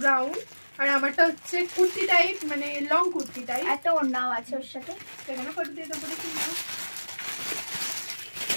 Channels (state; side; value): inverted; both; correlation -1.00